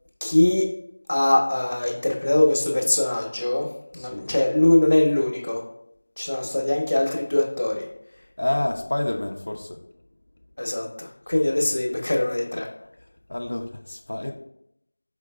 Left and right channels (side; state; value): both; inverted; correlation -1.00